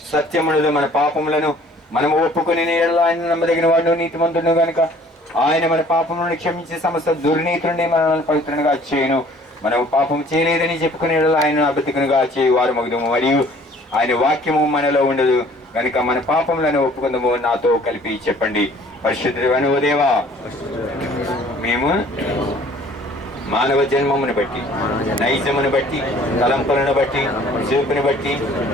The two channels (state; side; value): normal; both; correlation 0.54